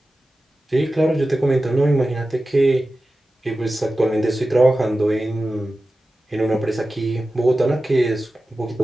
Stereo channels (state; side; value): normal; both; correlation 0.94